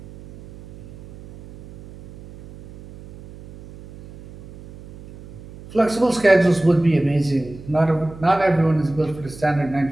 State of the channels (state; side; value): noise; right; hum, 18 dB below the sound